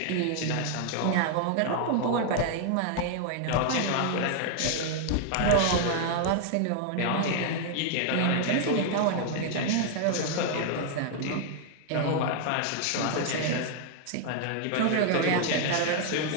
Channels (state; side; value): different; both; correlation 0.00